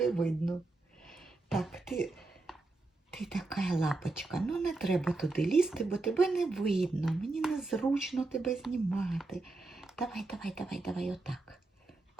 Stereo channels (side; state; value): left; quieter; 3.2 dB